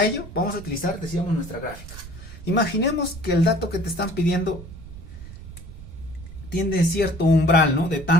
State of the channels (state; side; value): noise; right; rumble, 14 dB below the sound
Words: ello, vamos a utilizar, decíamos, nuestra gráfica. Imaginemos que el dato que te están pidiendo tiene cierto umbral, ¿no? De